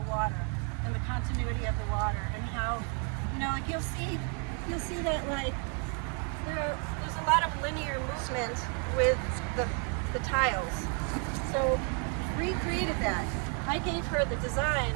water and the continuity of the water and how, you know, like you'll see that like there's a lot of linear movement with the tiles. So Ree created that. I gave her the design,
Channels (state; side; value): quieter; left; 39.4 dB